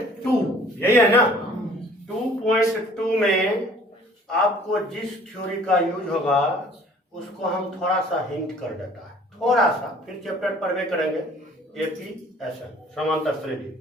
यही है ना। 2.2 में आपको जिस थ्योरी का यूज होगा उसको हम थोड़ा सा हिंट कर देता है थोड़ा सा फिर चैप्टर पढ़वे करेंगे एपी एसएन समांतर श्रेणी।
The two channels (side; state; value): both; normal; correlation 0.53